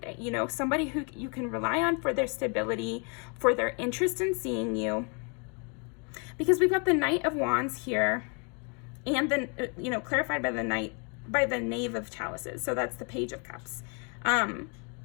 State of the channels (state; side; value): quieter; right; 36.4 dB